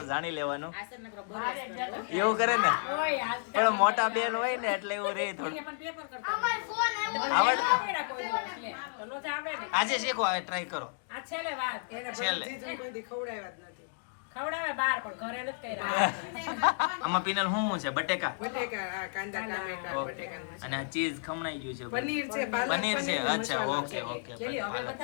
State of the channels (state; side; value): silent; right; digital silence